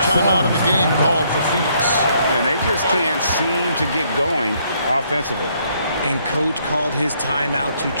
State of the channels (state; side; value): inverted; both; correlation -0.69